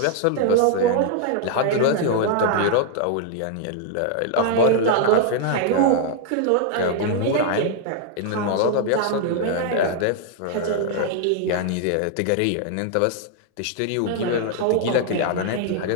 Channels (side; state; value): both; different; correlation 0.00